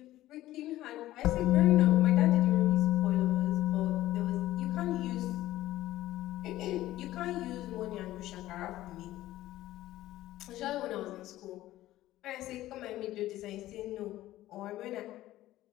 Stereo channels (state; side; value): quieter; right; 15.2 dB